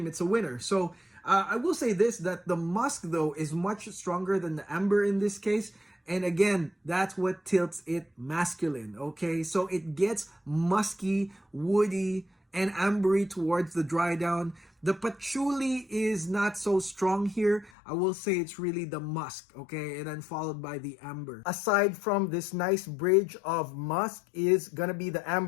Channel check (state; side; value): drops out; right; at 17.7 s